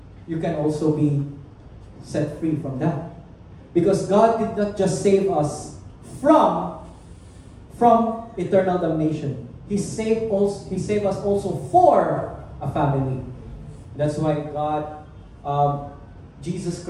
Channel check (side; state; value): both; identical; correlation 1.00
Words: you can also be set free from that. Because God did not just save us from eternal damnation. He saved us also for a family. That's why God, Jesus